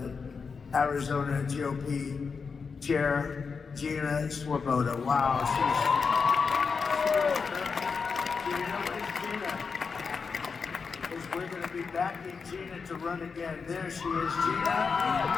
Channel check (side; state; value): right; quieter; 5.3 dB